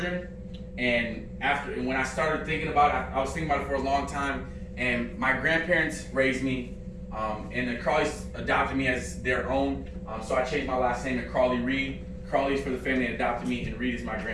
And when I started thinking about it, I was thinking about it for a long time. And my grandparents raised me, and the Crawleys adopted me as their own. So I changed my last name to Crawley-Reid. Crawley is for the family that adopted me, and Reid is my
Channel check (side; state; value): both; identical; correlation 1.00